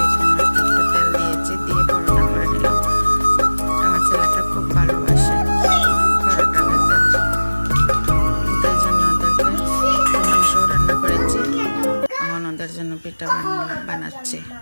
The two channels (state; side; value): inverted; both; correlation -1.00